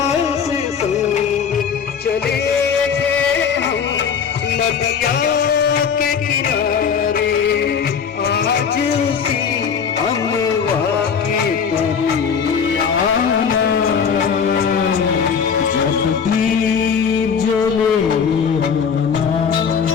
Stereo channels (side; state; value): right; quieter; 6.7 dB